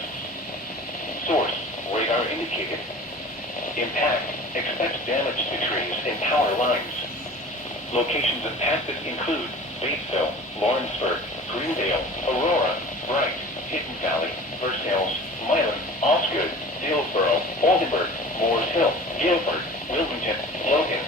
Source, radar indicated. Impact, expects damage to trees and power lines. Locations impacted include Batesville, Lawrenceburg, Greendale, Aurora, Bright, Hidden Valley, Versailles, Milan, Osgood, Dillsboro, Oldenburg, Moores Hill, Guilford, Wilmington, Logan,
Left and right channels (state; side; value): normal; both; correlation 0.41